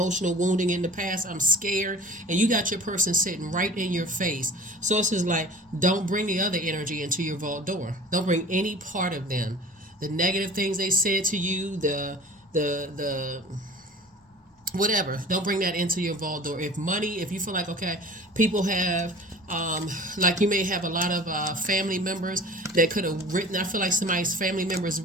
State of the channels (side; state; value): both; normal; correlation 0.42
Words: wounding in the past, I'm scared, and you got your person sitting right in your face. Source is like, don't bring the other energy into your vault door. Don't bring any part of them. The negative things they said to you, the whatever, don't bring that into your vault door. If you feel like, okay, people have like you may have a lot of family members that could have written, I feel like somebody's family members